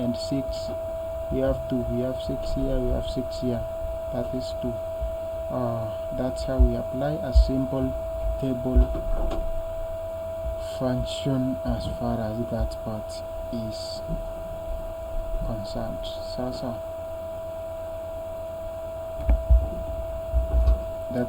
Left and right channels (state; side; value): identical; both; correlation 1.00